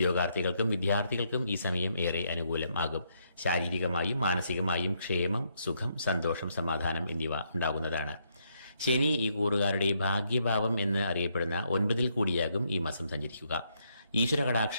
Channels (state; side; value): inverted; both; correlation -0.75